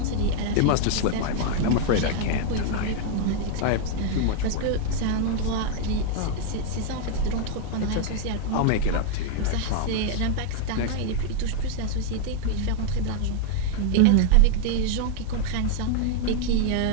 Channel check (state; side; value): different; both; correlation 0.00